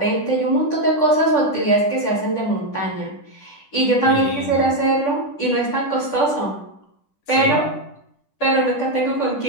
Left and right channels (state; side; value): late; right; 10 ms